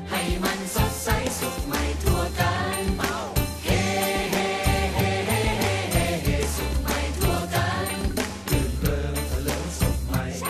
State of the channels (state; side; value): identical; both; correlation 1.00